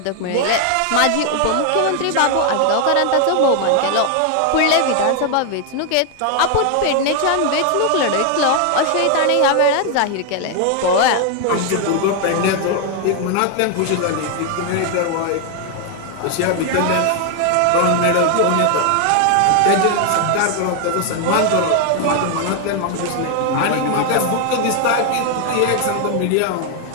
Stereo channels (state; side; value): different; both; correlation 0.00